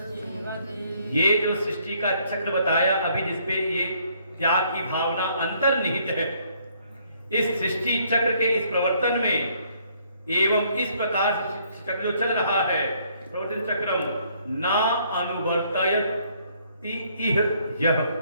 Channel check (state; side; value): inverted; both; correlation -0.66